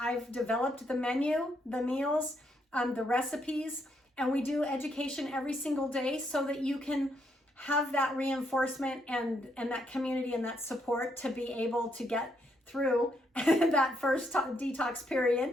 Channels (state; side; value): normal; both; correlation 0.75